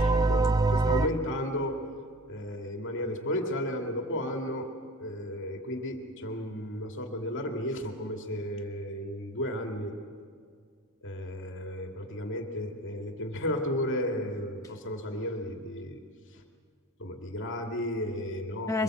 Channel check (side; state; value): both; normal; correlation 0.36